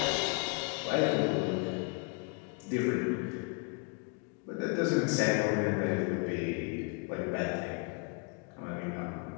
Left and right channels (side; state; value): right; quieter; 32.1 dB